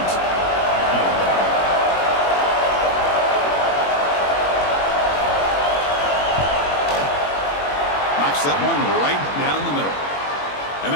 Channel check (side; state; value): right; late; 21 ms